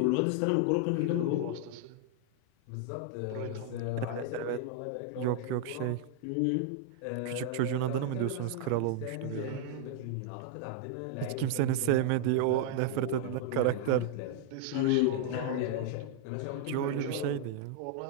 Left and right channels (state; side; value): different; both; correlation -0.01